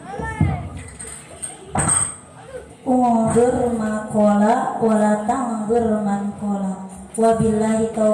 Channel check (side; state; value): both; identical; correlation 1.00